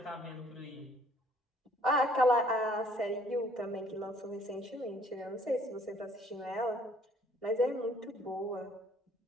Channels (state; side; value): normal; both; correlation 0.60